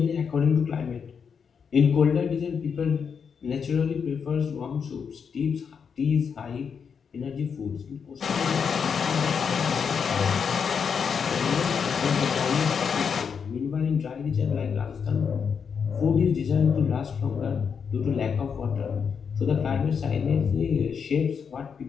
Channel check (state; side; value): quieter; right; 6.5 dB